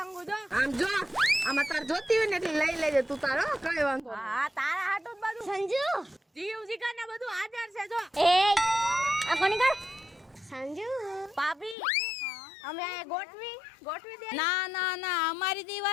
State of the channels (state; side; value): drops out; right; at 11.8 s